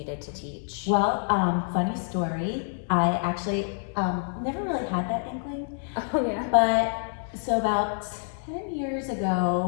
to teach? Well, funny story. I actually never really had that inkling. Oh yeah. But so about 10 years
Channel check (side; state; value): right; silent; digital silence